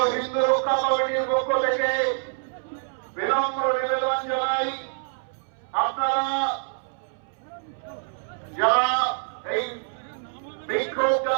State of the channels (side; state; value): left; silent; 61 dB below the other